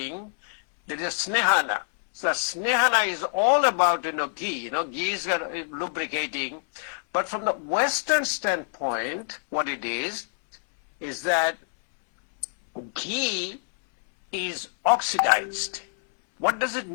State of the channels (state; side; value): silent; right; 61 dB below the other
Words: there is Snehana. So Snehana is all about, ghee, ghee is lubricating. But from the Western standpoint, what it is that ghee is oxidized. What does it